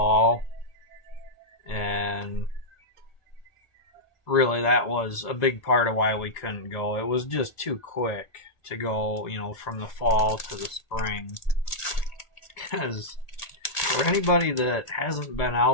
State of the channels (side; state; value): right; late; 1.8 ms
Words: and really that was a big part of why we couldn't go. It was just too quick to go, you know, from the fall to the spring. Because for anybody that hasn't been